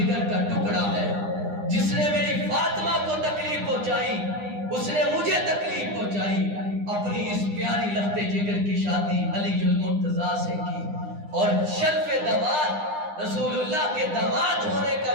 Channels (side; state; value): left; late; 9.8 ms